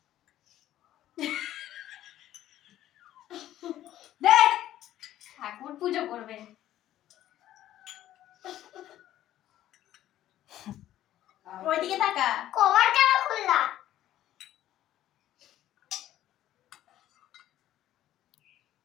দে, ঠাকুর পুজো করবে। ওইদিকে তাকা। কভার কেন খুললা?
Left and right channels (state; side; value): quieter; right; 13.0 dB